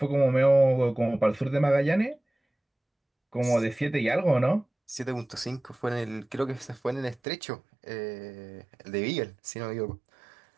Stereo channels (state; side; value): drops out; left; at 7.2 s